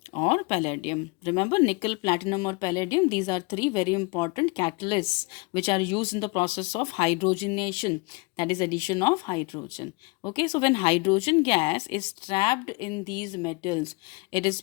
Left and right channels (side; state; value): right; quieter; 27.4 dB